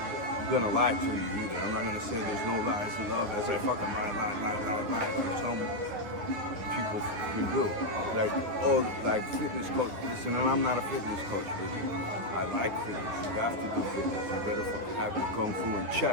gonna lie to you either. I'm not gonna say there's no lies in love as I fucking lie like some people can do. Like fitness coach. Listen, and I'm not a fitness coach really. I like fitness. You have to do fitness. You better fucking have your kung fu in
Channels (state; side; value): late; left; 10 ms